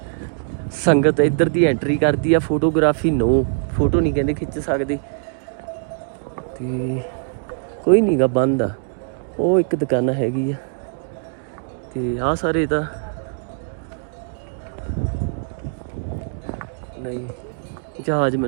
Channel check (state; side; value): silent; left; digital silence